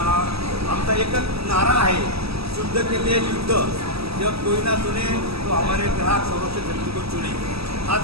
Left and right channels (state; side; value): late; left; 0.77 ms